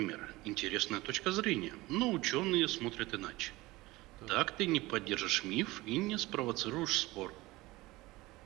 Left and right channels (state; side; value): quieter; left; 20.1 dB